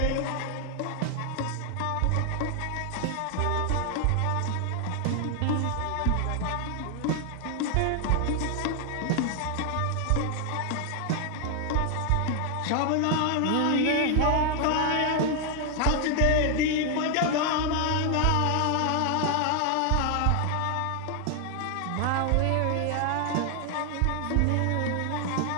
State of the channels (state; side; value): different; both; correlation 0.00